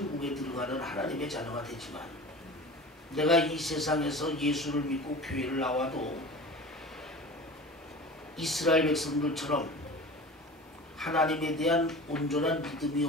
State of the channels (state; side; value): normal; both; correlation 0.36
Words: 들어가는 하나님의 자녀가 되지만 내가 이 세상에서 예수를 믿고 교회를 나와도 이스라엘 백성들처럼 하나님에 대한 온전한 믿음이